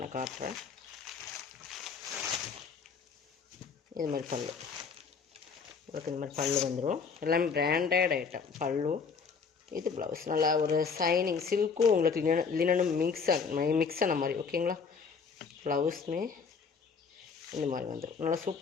காட்டுறேன். இது மாதிரி பல்லு, இதுக்கு இந்த மாதிரி பல்லு வந்துடும். எல்லாமே பிராண்டட் ஐட்டம். பல்லு, இது ப்ளவுஸ். நல்லா ஒரு சைனிங் சில்க்கும் உங்களுக்கு லினனும் மிக்ஸ் ஆன மாதிரி. ஓகேங்களா, ப்ளவுஸுமே இந்த மாதிரி வந்துடும். நல்லா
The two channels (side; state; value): right; quieter; 5.6 dB